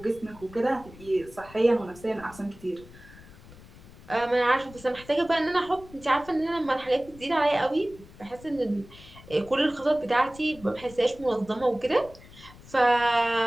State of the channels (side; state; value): left; noise; rumble, 20 dB below the sound